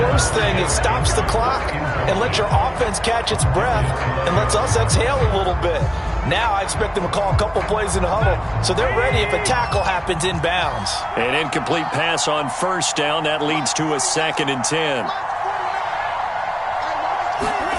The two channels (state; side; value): identical; both; correlation 1.00